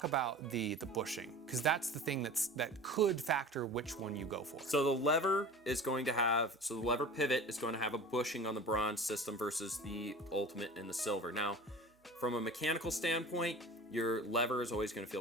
about the bushing, because that's the thing that could factor which one you go for. So the lever pivot is going to have a bushing on the Bronze system versus the Ultimate and the Silver. Now, from a mechanical standpoint, Your lever is always going to feel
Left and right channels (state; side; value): normal; both; correlation 0.38